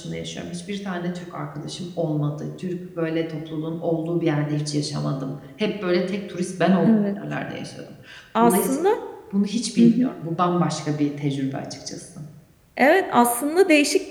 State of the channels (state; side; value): identical; both; correlation 1.00